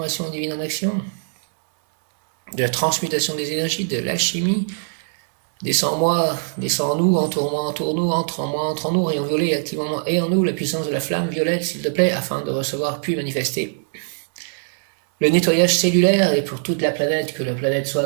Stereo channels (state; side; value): silent; left; digital silence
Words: divine en action, de la transmutation des énergies, de l'alchimie. Descends en moi, descends en nous, entoure-moi, entoure-nous, entre en moi, entre en nous, rayon violet, active en moi et en nous la puissance de la flamme violette, s'il te plaît, afin de recevoir puis manifester le nettoyage cellulaire et pour toute la planète, que la planète